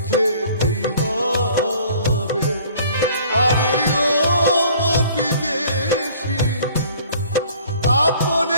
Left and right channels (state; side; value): inverted; both; correlation -0.53